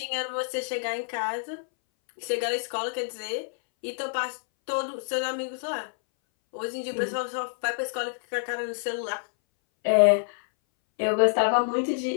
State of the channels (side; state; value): right; silent; 60 dB below the other